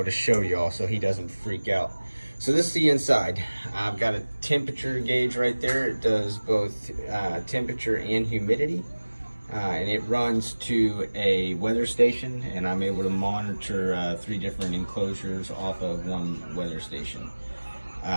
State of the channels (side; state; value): both; inverted; correlation -1.00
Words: to show y'all so he doesn't freak out. So this is the inside. I've got a temperature gauge right there. It does both temperature and humidity. And it runs to a weather station, and I'm able to monitor 3 different enclosures off of one weather station.